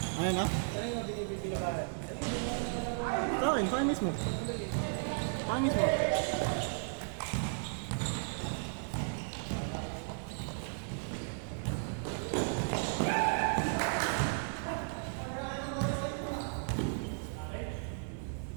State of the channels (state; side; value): silent; left; digital silence